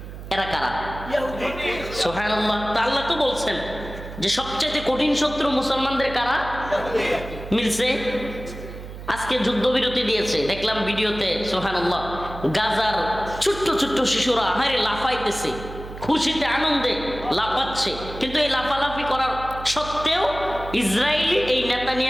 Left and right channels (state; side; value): noise; right; hum, 12 dB below the sound